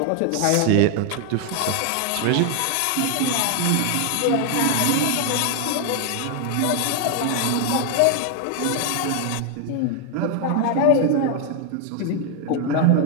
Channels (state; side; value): different; both; correlation 0.00